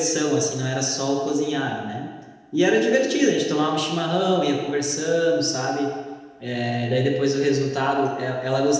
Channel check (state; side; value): identical; both; correlation 1.00